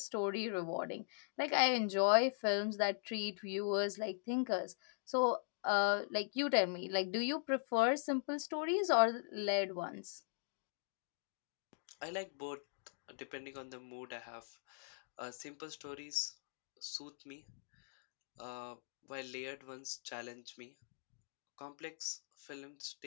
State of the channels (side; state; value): right; silent; digital silence